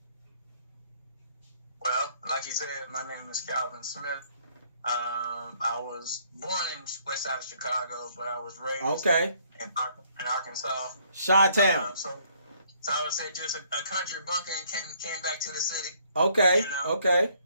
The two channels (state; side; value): inverted; both; correlation -0.65